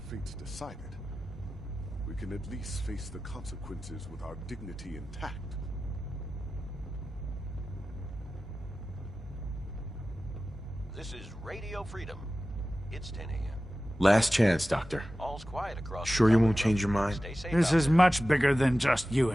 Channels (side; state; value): both; normal; correlation 0.95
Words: fate's decided, we can at least face the consequences with our dignity intact. This is Radio Freedom. It's 10 a.m. Last chance, Doctor. All's quiet across. Sure you won't change your mind? Stay safe This out is much bigger than just you